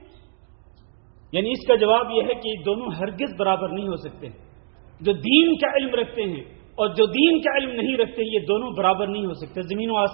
یعنی اس کا جواب یہ ہے کہ دونوں ہرگز برابر نہیں ہو سکتے. جو دین کا علم رکھتے ہیں اور جو دین کا علم نہیں رکھتے، یہ دونوں برابر نہیں ہو سکتے. زمین و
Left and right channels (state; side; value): silent; left; digital silence